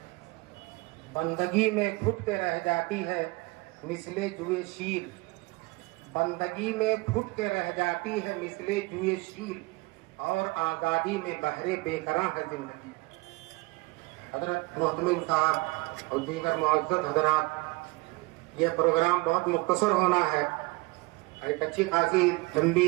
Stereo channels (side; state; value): left; quieter; 24.5 dB